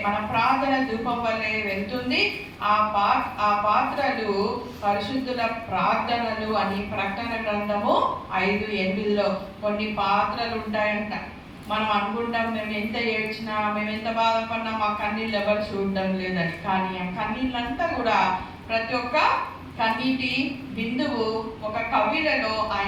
మన ప్రార్థన ధూపం వలె వెళ్తుంది. ఆ పాత్రలు పరిశుద్ధుల ప్రార్థనలు అని ప్రకటన గ్రంథము 5:8లో కొన్ని పాత్రలు ఉంటాయంట. మనం అనుకుంటాం మేము ఎంత ఏడ్చినా, మేము ఎంత బాధపడినా మా కన్నీళ్ళు ఎవరు చూడడం లేదని. కానీ ఆ కన్నీళ్ళంతా కూడా ప్రతి ఒక్క కన్నీటి బిందువు ఒక కవిలలో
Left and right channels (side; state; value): both; identical; correlation 1.00